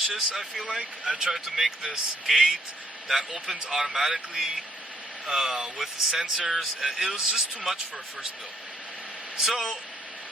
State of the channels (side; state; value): both; normal; correlation 0.68